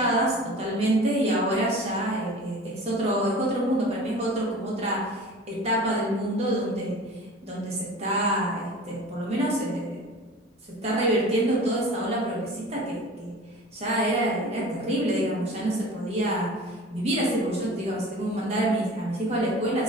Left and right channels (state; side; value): normal; both; correlation 0.40